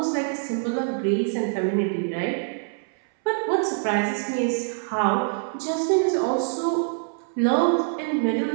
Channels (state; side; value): silent; left; 62 dB below the other